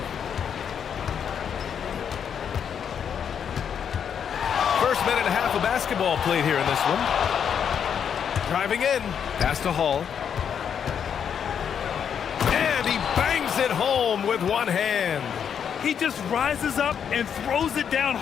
First minute and a half of basketball played here in this one. Driving in, pass to Hall. And he bangs it home with one hand. He just rises up and throws it down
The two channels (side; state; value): right; quieter; 7.9 dB